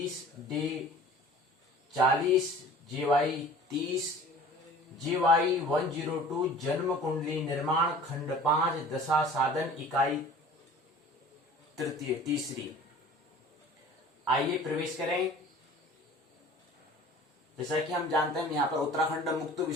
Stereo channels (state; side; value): normal; both; correlation 0.46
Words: डे 40 JY 30 JY 102 जन्म कुंडली निर्माण खंड 5 दशा साधन इकाई तीसरी। आइए प्रवेश करें। जैसा कि हम जानते हैं, यहाँ पर उत्तराखंड मुक्त